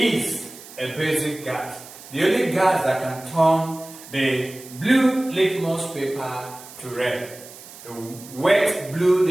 a basic gas. The only gas that can turn the blue litmus paper to red, the wet blue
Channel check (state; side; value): noise; right; hiss, 17 dB below the sound